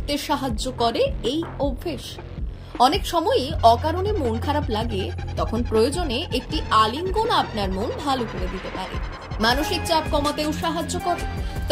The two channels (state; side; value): identical; both; correlation 1.00